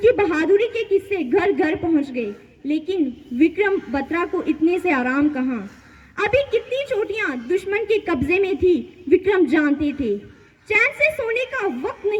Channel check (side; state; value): both; identical; correlation 1.00